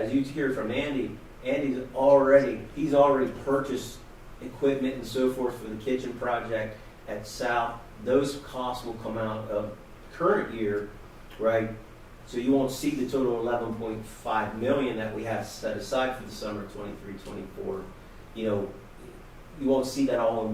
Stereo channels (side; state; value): both; identical; correlation 1.00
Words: you hear from Andy, he's already purchased equipment and so forth for the kitchen project at South. Those costs will come out of current year, right? So you won't see the total 11.5 million that we have set aside for the summer 23-24. You know, you won't see that all